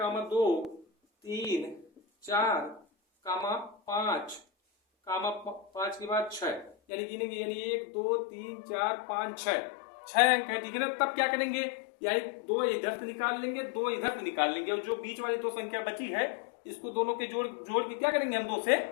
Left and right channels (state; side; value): drops out; right; at 6.8 s